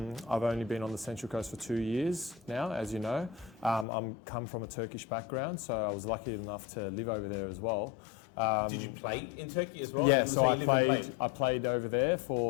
only been on the Central Coast for 2 years now, as you know. I'm come from a Turkish background, so I was lucky enough to live over there as well. Did you play in Turkey as well? Yeah, so I played over there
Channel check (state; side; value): drops out; right; at 3.9 s